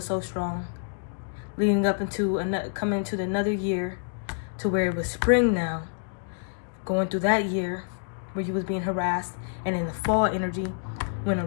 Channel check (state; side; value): silent; right; digital silence